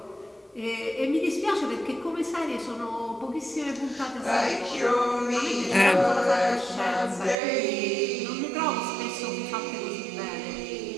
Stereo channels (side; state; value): left; drops out; at 7.4 s